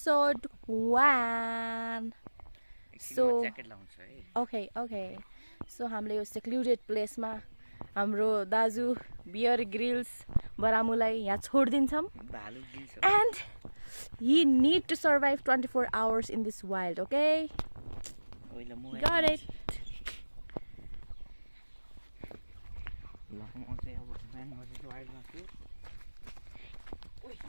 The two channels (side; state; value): both; inverted; correlation -1.00